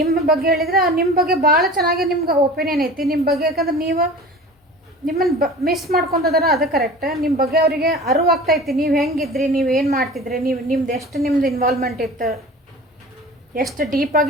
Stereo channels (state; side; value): normal; both; correlation 0.38